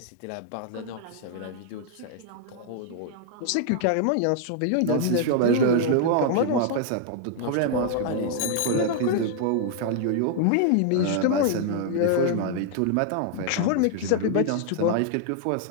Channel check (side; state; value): both; different; correlation 0.00